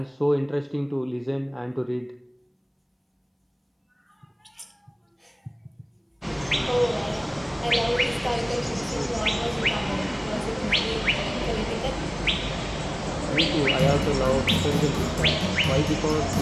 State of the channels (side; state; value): both; identical; correlation 1.00